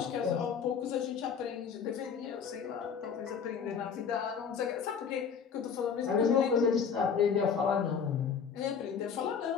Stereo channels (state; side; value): quieter; right; 6.6 dB